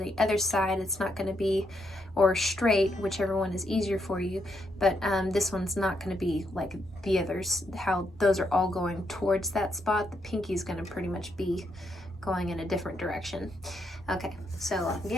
other side. It's not going to be, or straight, whichever one is easier for you. But this one's not going to be like the others, how those are all going towards that spot. The pinky is going to pretty much be going in a different direction. Okay, so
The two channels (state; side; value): normal; both; correlation 0.78